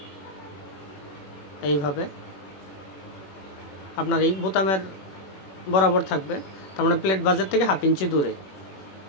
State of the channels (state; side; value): late; right; 21 ms